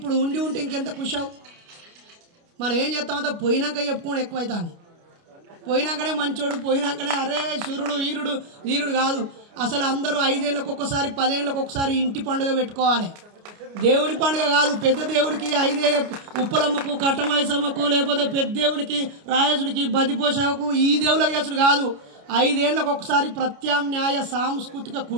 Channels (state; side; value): late; left; 29 ms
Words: ఉండి ఉంటే ఇంకెంత ఖుషావు. మనం ఏం చేస్తామంటే పోయినాక చెప్పుకోవడం ఎక్కువైతుంది. పోయినాకనే మంచోడు, పోయినాకనే అరే సూర్యుడు, వీరుడు, వీరుడు కాదు. అసలు అందరూ 5 ఏళ్ళకు ఒక్కసారి, 10 ఏళ్ళకు ఒకసారి ఇంటి పండుగ పెట్టుకోవాలి. దేవుడి పండుగ కాదు. పెద్ద దేవుడికి 5 ఉప్పలమ్మకు, కట్టమైసమ్మకు, లేకపోతే పెద్ద దేవుడికి, రాయసుడికి, బదిపోషకు, ఈ దేవుళ్ళ చేసుడు కాదు. 5 ఏళ్ళకు ఒకసారి ప్రత్యామ్నాయ సాంస్కృతిక